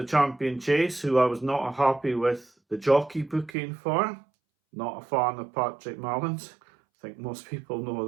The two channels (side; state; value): left; drops out; at 3.5 s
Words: Champion Chase who I was not happy with the jockey booking for. Not a fan of Patrick Mallins. I think most people know